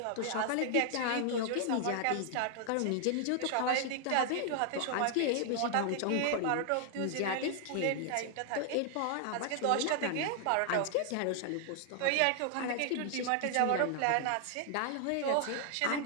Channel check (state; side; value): different; both; correlation 0.00